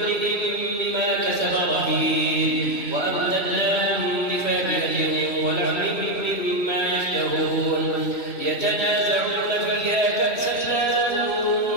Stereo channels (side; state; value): right; late; 2.7 ms